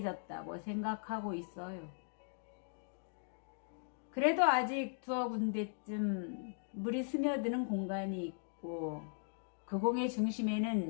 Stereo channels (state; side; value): silent; right; digital silence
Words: 생각하고 있어요. 그래도 아직 두어 군데쯤 물이 스며드는 공간이 있고 그 공의